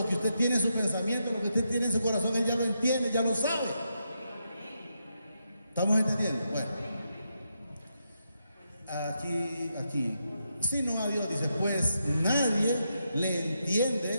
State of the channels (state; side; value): inverted; both; correlation -0.83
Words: que usted tiene en su pensamiento, lo que usted tiene en su corazón, él ya lo entiende, ya lo sabe. ¿Estamos entendiendo? Bueno, aquí, sino a Dios, dice, pues nadie le